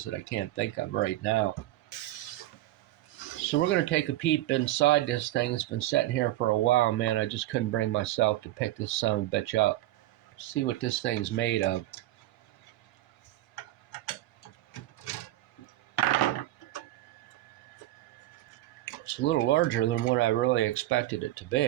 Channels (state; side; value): quieter; left; 15.6 dB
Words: that I can't think of right now. So we're going to take a peep inside this thing. It's been sitting here for a while, man. I just couldn't bring myself to pick this son of a bitch up. See what this thing's made of. It's a little larger than what I really expected it to